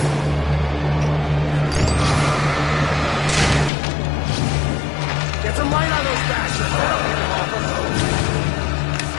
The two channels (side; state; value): right; drops out; at 3.7 s